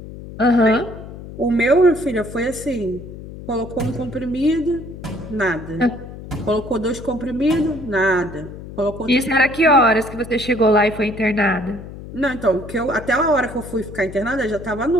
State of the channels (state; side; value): noise; left; hum, 13 dB below the sound